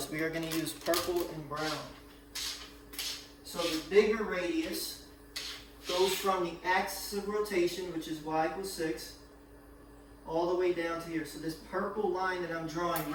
We are going to use purple and brown. So the bigger radius goes from the axis of rotation, which is y equals 6, all the way down to here. So this purple line that I'm drawing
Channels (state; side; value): identical; both; correlation 1.00